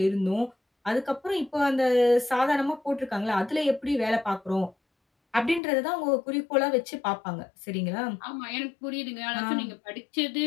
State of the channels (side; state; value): right; drops out; at 5.6 s